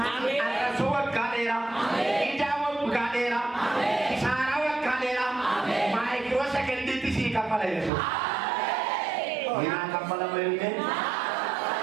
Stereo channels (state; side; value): drops out; left; at 7.9 s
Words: arrasuu waggaa dheeraa ijaa waggaa dheeraa kisaaraa waggaa dheeraa maayikiroo sagantiitti sii kaffala jechuudha. Minaa kaffala malee